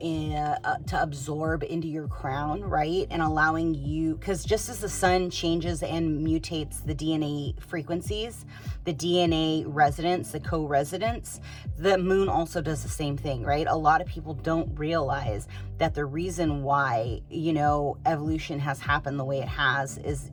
absorb into your crown, right? And allowing you, because just as the sun changes and mutates the DNA frequencies, the DNA residence, the co-residence, the moon also does the same thing, right? A lot of people don't realize that the reason why, you know, evolution has happened the way it has is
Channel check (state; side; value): identical; both; correlation 1.00